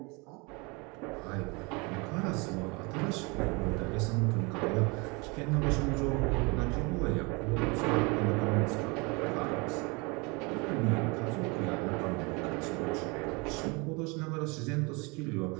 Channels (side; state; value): left; quieter; 28.3 dB